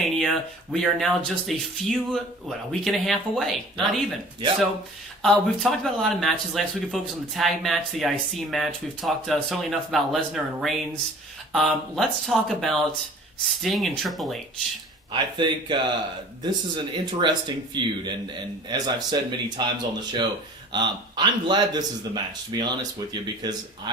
we are now just a week and a half away. Not even. Yeah. So, we've talked about a lot of matches. Last week we focused on the tag match, the IC match. We've talked certainly enough about Lesnar and Reigns. Let's talk about Sting and Triple H. I think this is an interesting feud, and as I've said many times on the show, I'm glad this is the match, to be honest with you, because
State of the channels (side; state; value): both; normal; correlation 0.47